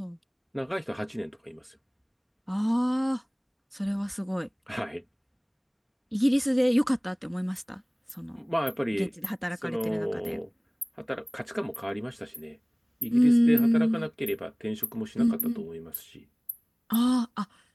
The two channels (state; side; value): identical; both; correlation 1.00